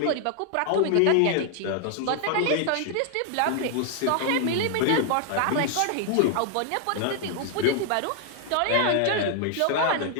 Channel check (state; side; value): different; both; correlation 0.00